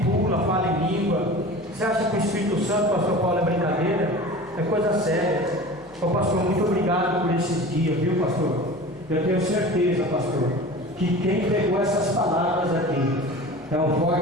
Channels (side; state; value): left; noise; hum, 26 dB below the sound